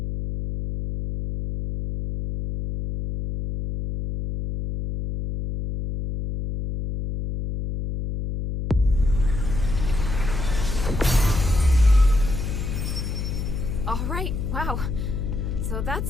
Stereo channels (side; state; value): left; noise; hum, 3 dB below the sound